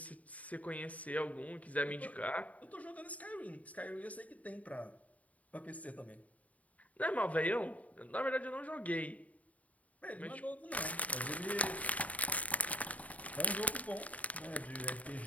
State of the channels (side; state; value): right; late; 0.070 ms